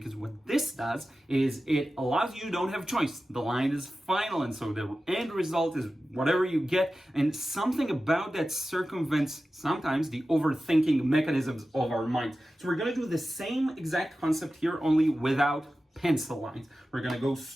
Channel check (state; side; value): normal; both; correlation 0.94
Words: what this does is it allows you don't have choice. The line is final, and so the end result is whatever you get, and something about that circumvents sometimes the overthinking mechanisms of our minds. So we're going to do the same exact concept here, only without pencil lines. We're going to go